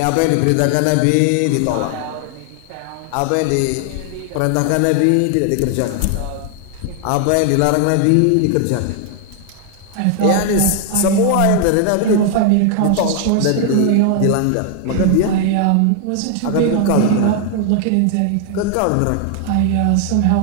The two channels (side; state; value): both; different; correlation 0.00